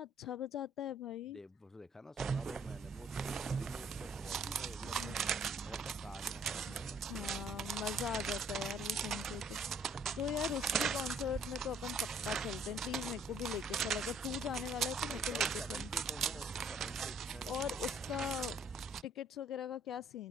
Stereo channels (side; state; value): both; normal; correlation 0.63